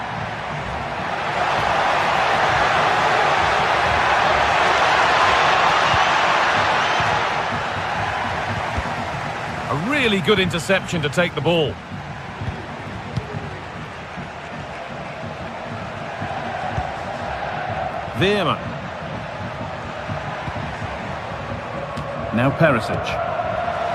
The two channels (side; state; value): both; identical; correlation 1.00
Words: A really good interception to take the ball. Veerman. Now Perisic.